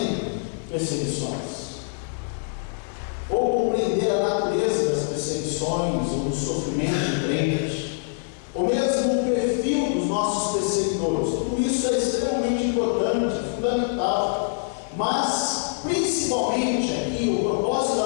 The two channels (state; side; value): silent; right; 61 dB below the other